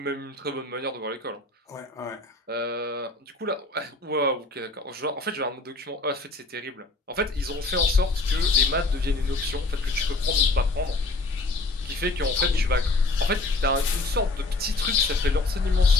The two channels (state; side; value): quieter; right; 3.1 dB